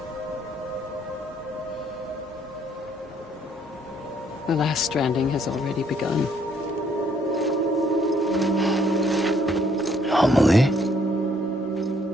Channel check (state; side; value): normal; both; correlation 0.66